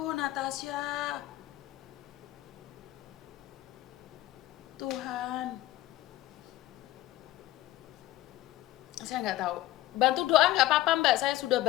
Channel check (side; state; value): right; quieter; 16.0 dB